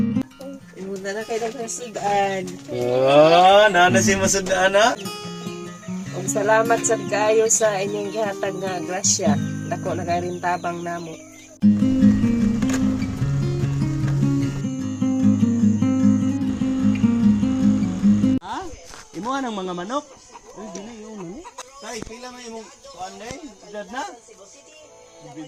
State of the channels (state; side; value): identical; both; correlation 1.00